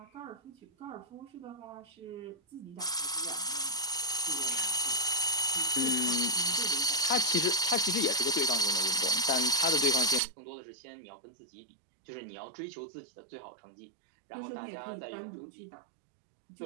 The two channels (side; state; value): left; drops out; at 10.2 s